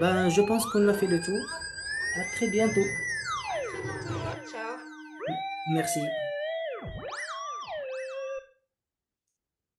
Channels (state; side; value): identical; both; correlation 1.00